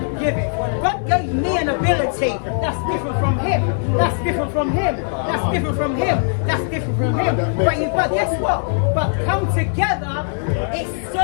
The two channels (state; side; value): silent; right; digital silence